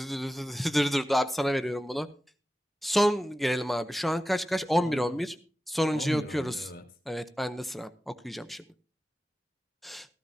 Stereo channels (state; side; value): normal; both; correlation 0.94